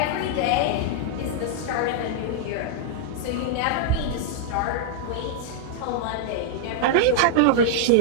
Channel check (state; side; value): different; both; correlation -0.01